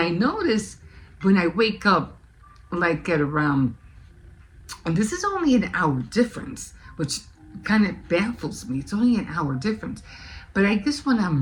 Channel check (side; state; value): both; identical; correlation 1.00